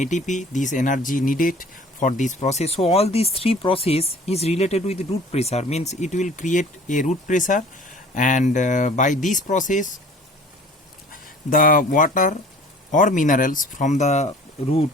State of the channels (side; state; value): both; normal; correlation 0.48